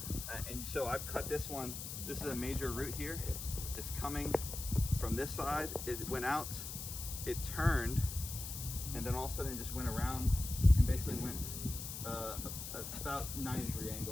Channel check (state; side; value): noise; left; hiss, 7 dB below the sound